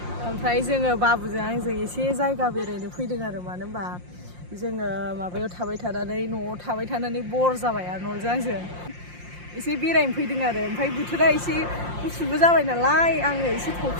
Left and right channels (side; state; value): left; late; 5.7 ms